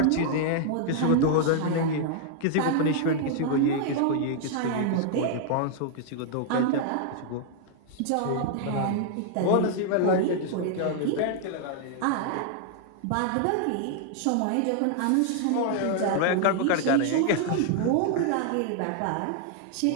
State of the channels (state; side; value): different; both; correlation 0.00